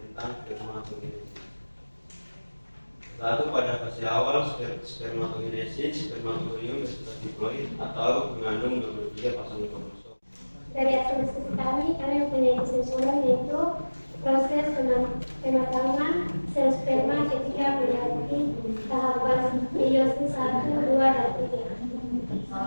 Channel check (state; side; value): inverted; both; correlation -1.00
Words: tentang spermatogenesis. Lalu pada fase awal spermatogenesis, spermatorium bersifat diploid atau mengandung 23 pasang kromosom. Dari hasil diskusi kami mempunyai kesimpulan yaitu proses pematangan sel sperma ketika melewati tahapan meiosis 1, 2, dan 3.